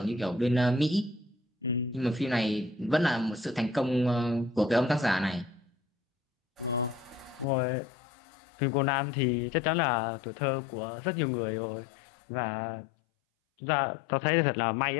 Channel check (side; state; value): right; drops out; at 7.5 s